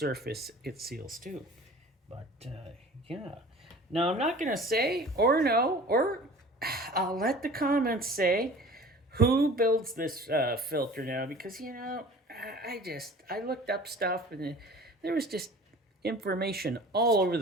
it seals to. But yeah, now I'm not gonna say or no, or I'll let the comments say who builds this filter now, because I looked up stuff and there was just information all over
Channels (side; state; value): both; normal; correlation 0.43